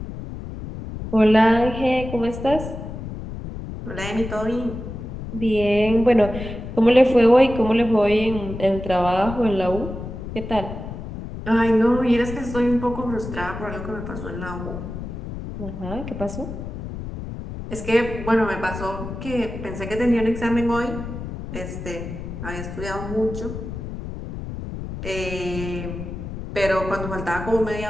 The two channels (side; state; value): left; noise; rumble, 8 dB below the sound